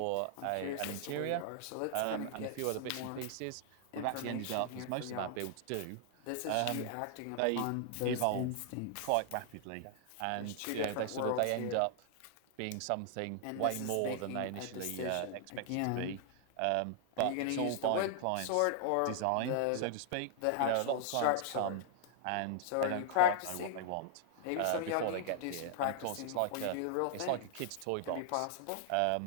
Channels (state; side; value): different; both; correlation -0.01